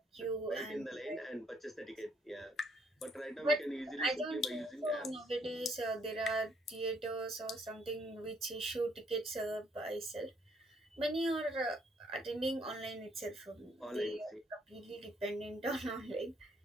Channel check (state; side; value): normal; both; correlation 0.68